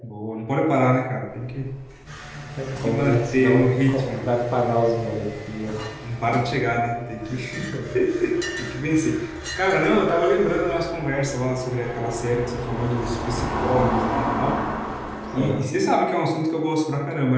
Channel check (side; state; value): both; identical; correlation 1.00